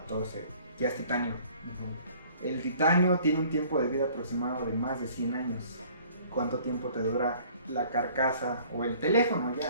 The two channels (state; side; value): inverted; both; correlation -0.54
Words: ya es titanio. El titanio tiene un tiempo de vida aproximado de más de 100 años. ¿Cuánto tiempo te dura la carcasa o el teléfono?